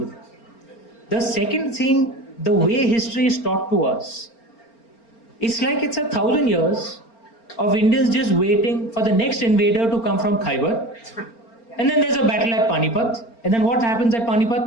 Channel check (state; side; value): late; right; 4.4 ms